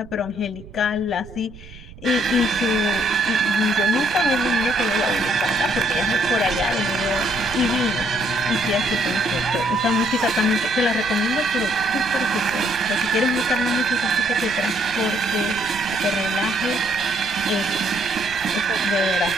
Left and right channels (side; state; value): right; noise; rumble, 18 dB below the sound